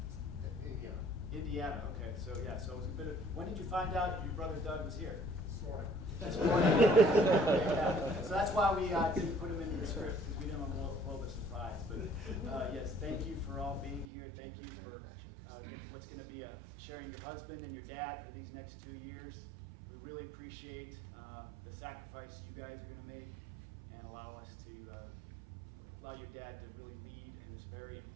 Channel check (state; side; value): drops out; left; at 14.1 s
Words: Indiana. Indiana, okay, so yeah, so it was a bit of, when did you find out your brother Doug was here? This morning. This morning. Yeah. So that's why we didn't put him into the script, because we didn't want a little bit surprised. But yes, thank you for all being here. Thank you for what's going to be sharing your husband and your dad for these next 2 years. We really appreciate the sacrifice you guys are going to make and allow us to allow your dad to really lead in this very